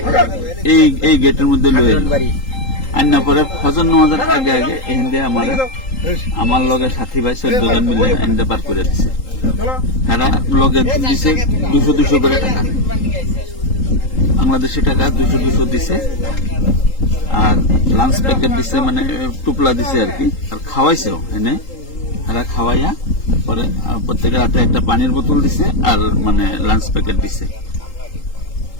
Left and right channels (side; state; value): right; late; 3.8 ms